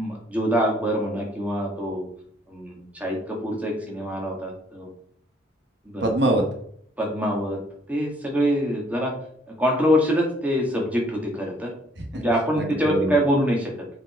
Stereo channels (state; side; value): normal; both; correlation 0.63